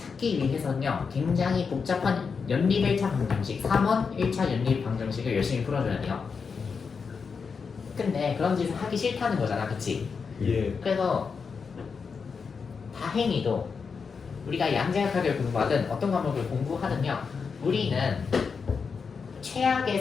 위해서는요 굉장히 복잡한 연립 1차 방정식 3원 1차 연립 방정식을 열심히 풀어줘야 돼요. 근데 그런 짓을 하기 싫다는 거잖아. 그치? 예. 그래서 다행히도 우리가 양자역학을 공부하든 어떤 과목을 공부하든요 우리는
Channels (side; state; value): right; quieter; 5.5 dB